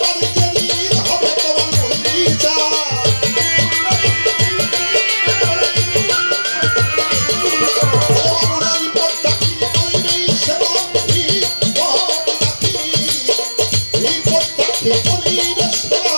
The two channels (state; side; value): inverted; both; correlation -1.00